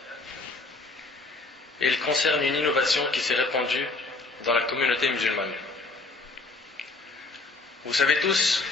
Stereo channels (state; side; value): quieter; right; 3.4 dB